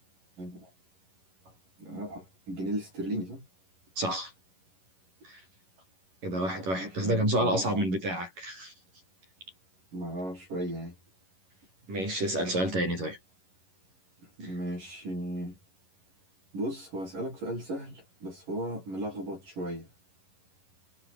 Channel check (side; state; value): left; late; 11 ms